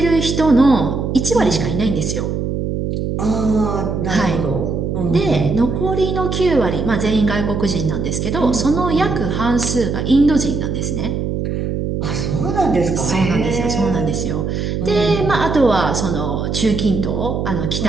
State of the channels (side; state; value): right; noise; hum, 2 dB below the sound